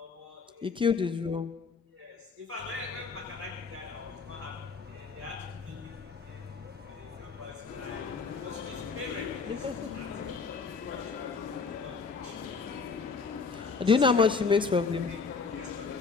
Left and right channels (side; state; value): right; quieter; 4.9 dB